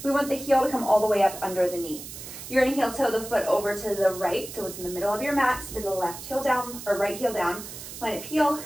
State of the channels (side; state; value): right; noise; hiss, 12 dB below the sound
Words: We want the heel to come all the way up under the knee. You're gonna heel toe the foot over to the right, so it's in the middle of your mat, spin the left heel down, or right heel down, line up heel